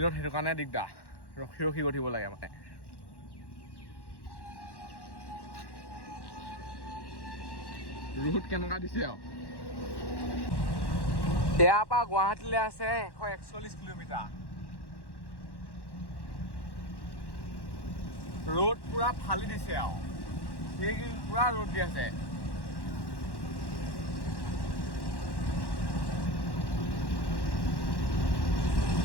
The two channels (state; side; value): late; right; 1.1 ms